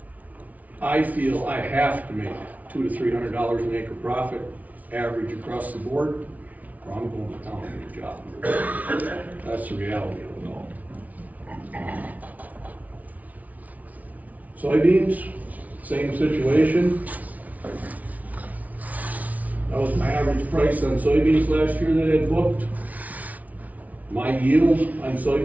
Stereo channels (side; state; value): left; late; 0.072 ms